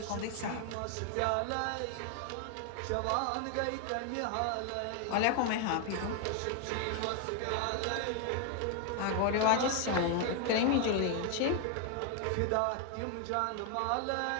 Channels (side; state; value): both; different; correlation 0.00